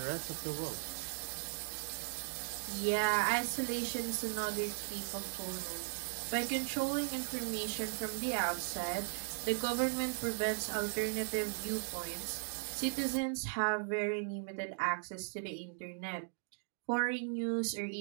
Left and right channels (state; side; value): silent; left; digital silence